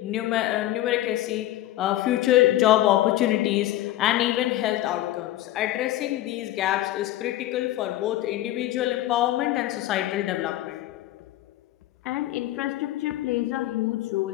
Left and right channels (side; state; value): right; quieter; 14.7 dB